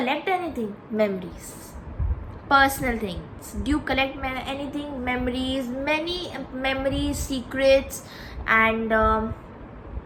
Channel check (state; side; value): identical; both; correlation 1.00